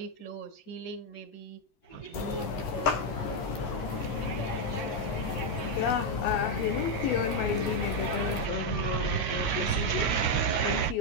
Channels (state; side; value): late; right; 12 ms